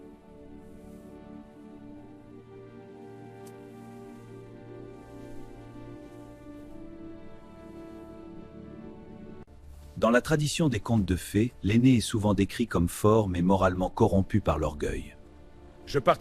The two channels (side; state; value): both; identical; correlation 1.00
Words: Dans la tradition des contes de fées, l'aîné est souvent décrit comme fort mais moralement corrompu par l'orgueil. Je